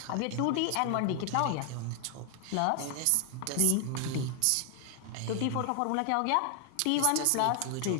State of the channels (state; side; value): different; both; correlation 0.00